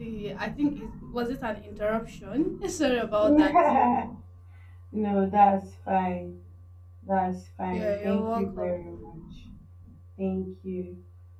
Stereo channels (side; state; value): both; identical; correlation 1.00